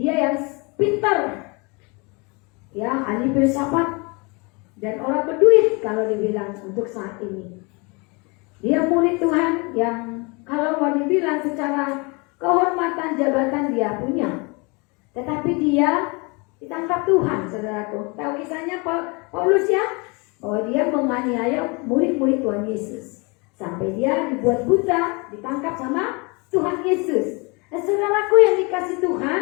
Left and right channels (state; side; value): quieter; right; 29.3 dB